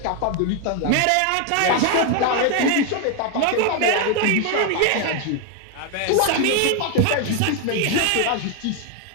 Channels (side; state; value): both; different; correlation 0.01